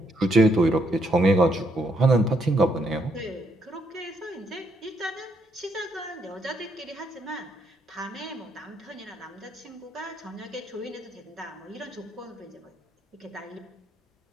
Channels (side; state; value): both; normal; correlation 0.74